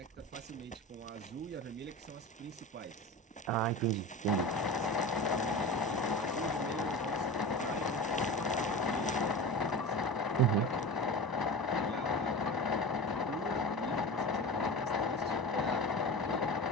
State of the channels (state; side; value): normal; both; correlation 0.30